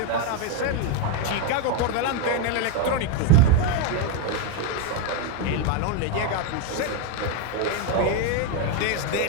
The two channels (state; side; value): different; both; correlation 0.02